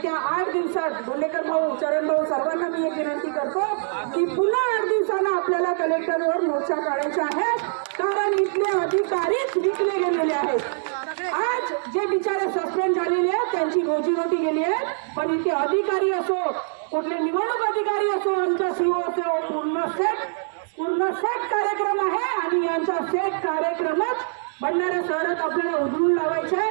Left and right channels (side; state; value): left; silent; digital silence